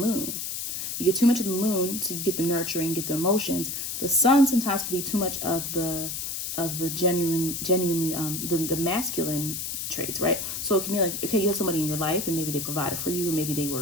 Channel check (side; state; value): left; noise; hiss, 4 dB below the sound